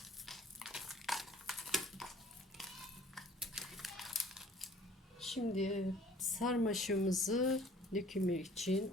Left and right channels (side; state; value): both; normal; correlation 0.52